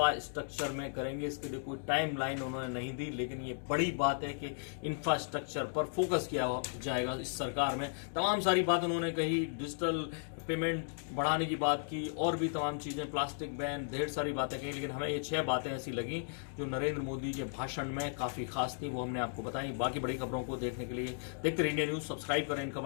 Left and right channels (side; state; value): right; silent; digital silence